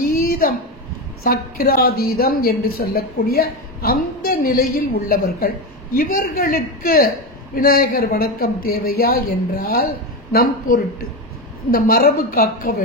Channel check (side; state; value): both; normal; correlation 0.15